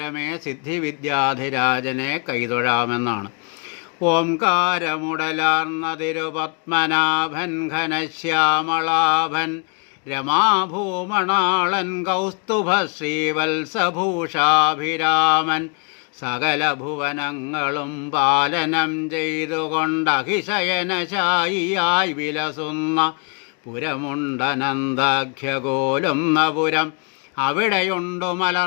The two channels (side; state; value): right; quieter; 36.1 dB